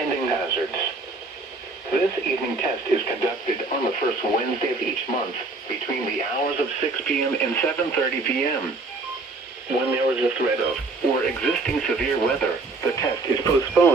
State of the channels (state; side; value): quieter; left; 3.5 dB